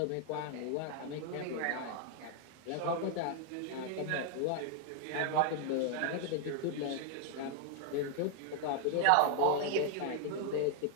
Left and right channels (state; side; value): different; both; correlation 0.00